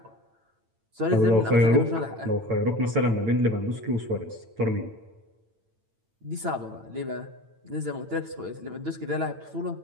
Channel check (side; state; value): left; late; 9.0 ms